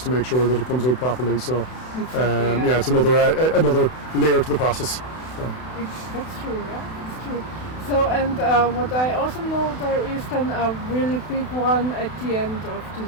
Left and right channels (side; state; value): right; late; 32 ms